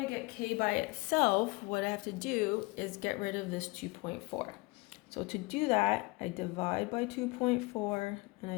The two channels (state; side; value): quieter; right; 25.3 dB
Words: to get k by itself, what I have to do is get rid of this 2.4. So to do that, I divide by 2.4 and I